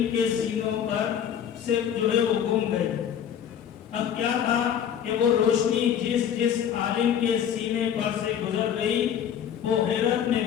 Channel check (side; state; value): right; quieter; 9.0 dB